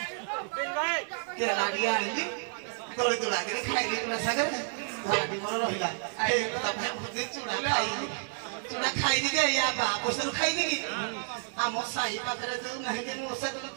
ଟିକେ ଆଣିଲି ତଳି ତୁଳାକିରି ଖାଇଲି ତୁଳା ଶାଗରେ ଧରାଟି ମୋର ରହିଲା ଚୁଡ଼ା ଖାଇଲି ଚୁଡ଼ା ଖାଇନି ଯେ ୟା ବା ପଇସାରୁ ଖାଇନି କି ଆମ ସାହି ପାଖରେ ଯୋଉ ନାହିଁ ଯେ ମୂଷା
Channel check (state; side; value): silent; left; 58 dB below the other